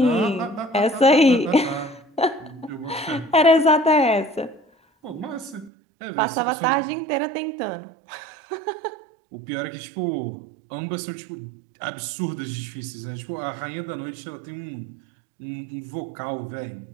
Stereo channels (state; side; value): drops out; left; at 5.7 s